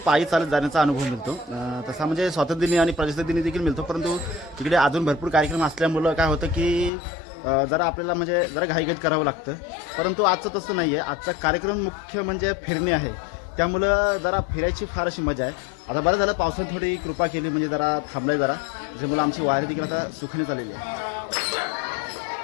पायी चालत जाण्याचा अनुभव मिळतो. तसा म्हणजे स्वातंत्र्यदिनी आणि प्रजासत्ताक दिनी देखील मिळतो, परंतु तिकडे अजून भरपूर कार्यक्रम असल्यामुळं काय होतं की जरा आपल्याला म्हणजे जरा घाईघाईत करावं लागतं. परंतु आजचं तसं नाही आहे, आजचा कार्यक्रम मुख्य म्हणजे फिरणे आहे, त्यामुळं जरा फिरायची फार अशी मजा आहे. आता बरं झालं पावसाने थोडी कृपा केली, म्हणजे जरा थांबलाय जरा, त्याच्यामुळं आमची वारी देखील आता सुखाने चाललेली आहे.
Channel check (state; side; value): drops out; right; at 6.9 s